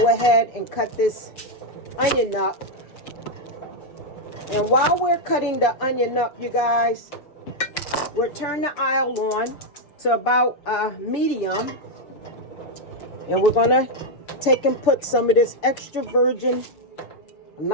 ahead and cut this onion up. And while we're cutting the onion up, you guys, we'll turn the oil on to about medium. And we're going to take and put some of this extra virgin,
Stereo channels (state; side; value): late; right; 6.6 ms